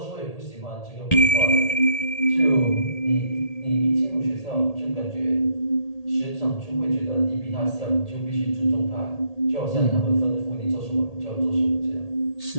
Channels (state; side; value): late; right; 1.8 ms